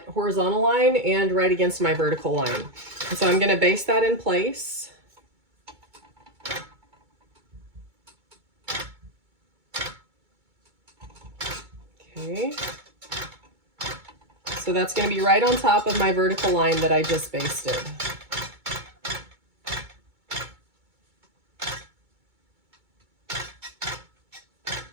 horizontal line and right against my vertical line. And so I'm going to base that in place. Okay. So that's going to be right on top of my vertical line that I just basted.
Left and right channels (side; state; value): left; late; 2.2 ms